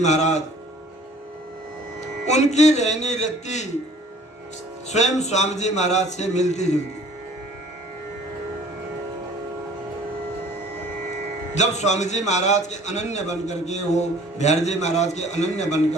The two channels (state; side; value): normal; both; correlation 0.52